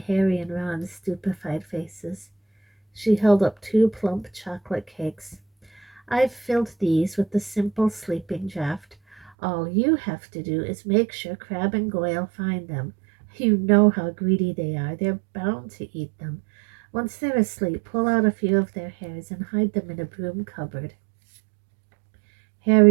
Harry and Ron's stupefied faces. She held up two plump chocolate cakes. I've filled these with the simple sleeping draught. All you have to do is make sure Crab and Goyle find them. You know how greedy they are. They're bound to eat them. Once they're asleep, pull out a few of their hairs and hide them in a broom cupboard.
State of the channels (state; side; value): drops out; left; at 9.3 s